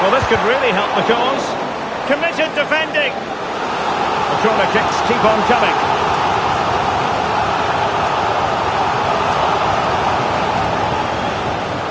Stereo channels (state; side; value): identical; both; correlation 1.00